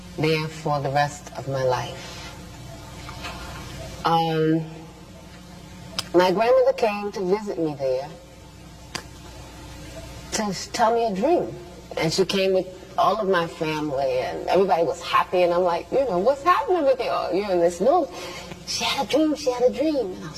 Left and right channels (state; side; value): identical; both; correlation 1.00